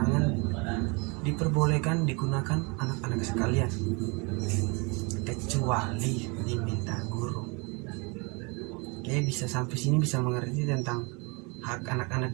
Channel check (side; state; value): left; quieter; 29.8 dB